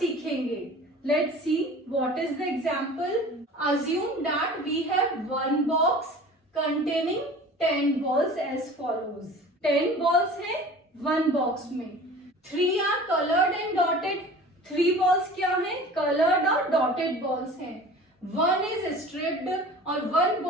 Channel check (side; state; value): both; normal; correlation 0.41